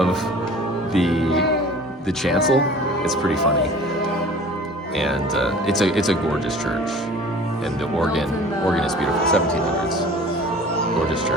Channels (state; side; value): normal; both; correlation 0.45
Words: the chancel. It's pretty funny, and it's a gorgeous church, and the organ is beautiful. 1700s, gorgeous